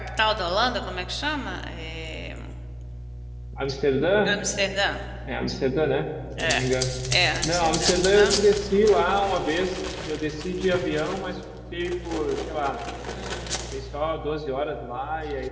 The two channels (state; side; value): identical; both; correlation 1.00